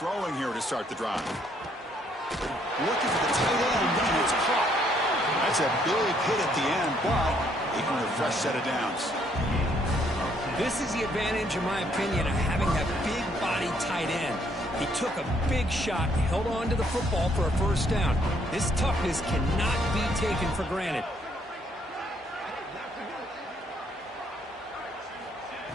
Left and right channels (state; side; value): normal; both; correlation 0.68